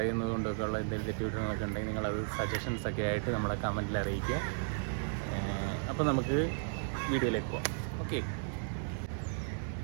കൊണ്ടൊക്കെ ഉള്ള എന്തെങ്കിലും തെറ്റുകുറ്റങ്ങളൊക്കെ ഉണ്ടെങ്കിൽ നിങ്ങളത് സജഷൻസൊക്കെ ആയിട്ട് നമ്മളെ കമൻറ്റിൽ അറിയിക്കുക. അപ്പോൾ നമുക്ക് വീഡിയോയിലേക്ക് പോകാം. ഓക്കെ.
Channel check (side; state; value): left; silent; digital silence